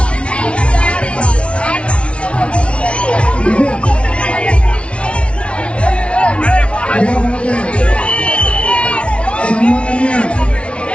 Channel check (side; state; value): right; late; 0.060 ms